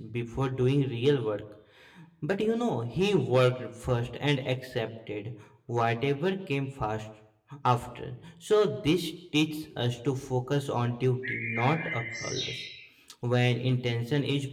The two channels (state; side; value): identical; both; correlation 1.00